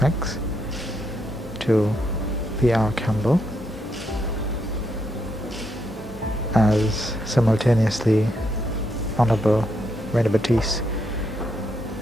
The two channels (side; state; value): both; normal; correlation 0.78